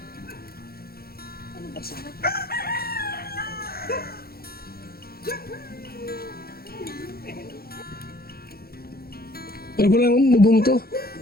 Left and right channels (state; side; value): late; right; 0.44 ms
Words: Pero ko lang bubong to.